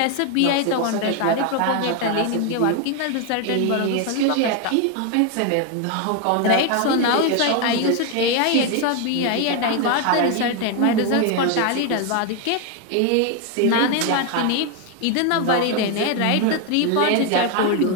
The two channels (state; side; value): different; both; correlation 0.01